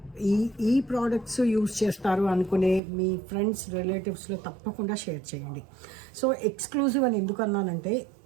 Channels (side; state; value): left; drops out; at 2.8 s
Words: ఈ ప్రోడక్ట్స్ యూజ్ చేస్తారు అనుకునే మీ ఫ్రెండ్స్ రిలేటివ్స్లో తప్పకుండా షేర్ చేయండి. సో ఎక్స్క్లూజివ్ అని ఎందుకు అన్నానంటే